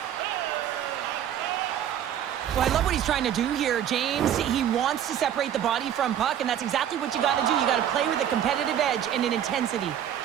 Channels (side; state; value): left; quieter; 10.1 dB